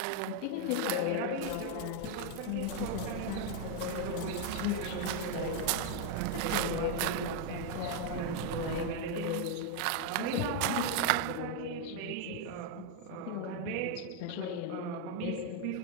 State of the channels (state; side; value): different; both; correlation 0.01